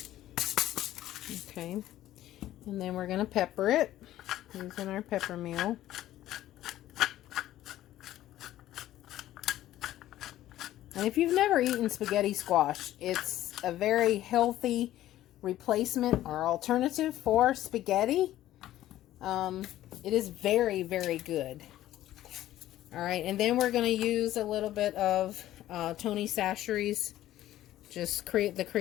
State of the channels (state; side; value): quieter; right; 13.8 dB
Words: Okay, and then we're going to pepper it using our pepper meal. And if you've never eaten spaghetti squash, it's a very healthy replacement or alternative for spaghetti. It is very, very good. All right, and then we're going to use a little bit of Tony Chachere's, just the